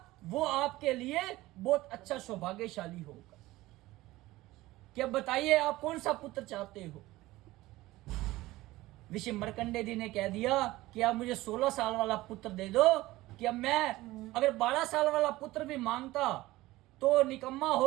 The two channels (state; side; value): quieter; left; 18.1 dB